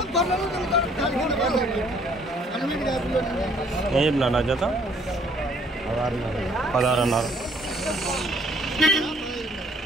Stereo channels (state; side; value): normal; both; correlation 0.61